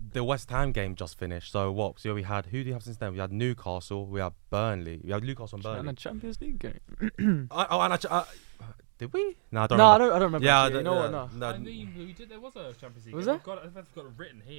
the West Ham game just finished. So what? So we had who do you have since then? We had Newcastle. We had Burnley. We had Newcastle and Burnley. And a Champions League game. Did we? No, I don't No, remember. I don't remember. Yeah, actually. You know what, no. I mean, we did. There was a Champions League Was game. there? I've got it written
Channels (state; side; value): silent; left; digital silence